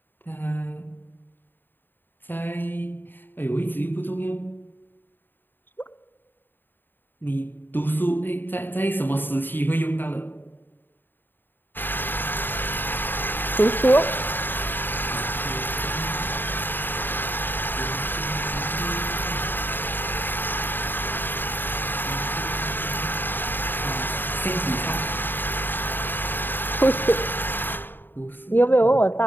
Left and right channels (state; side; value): late; right; 0.094 ms